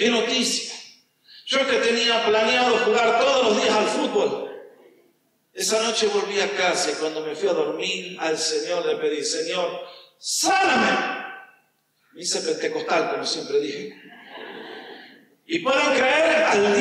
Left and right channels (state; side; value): identical; both; correlation 1.00